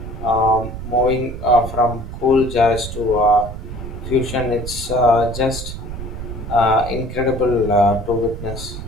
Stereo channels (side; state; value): right; noise; rumble, 9 dB below the sound